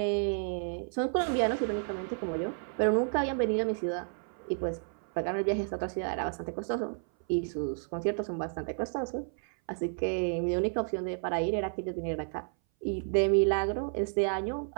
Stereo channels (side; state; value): left; silent; 57 dB below the other